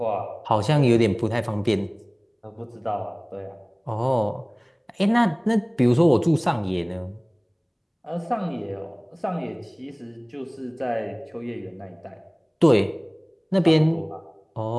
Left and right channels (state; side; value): identical; both; correlation 1.00